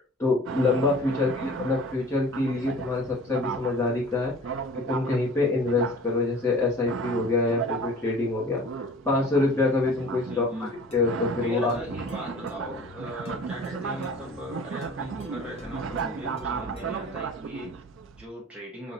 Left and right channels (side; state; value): both; normal; correlation 0.44